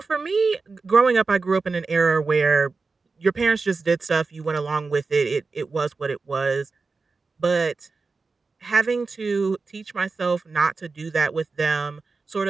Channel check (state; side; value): quieter; left; 4.2 dB